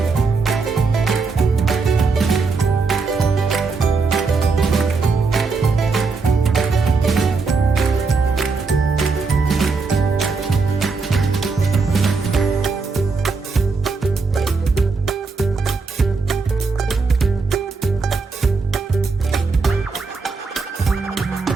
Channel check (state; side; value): quieter; left; 4.4 dB